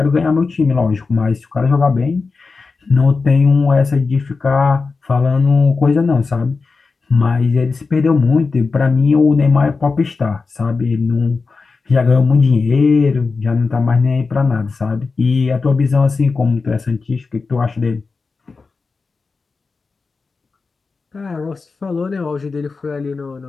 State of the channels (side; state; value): right; quieter; 4.3 dB